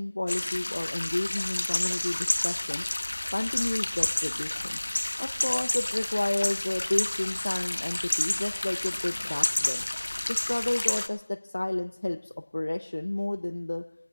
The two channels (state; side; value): inverted; both; correlation -1.00